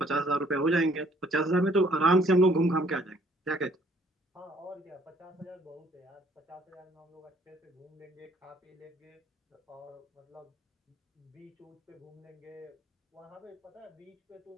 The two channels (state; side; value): normal; both; correlation 0.62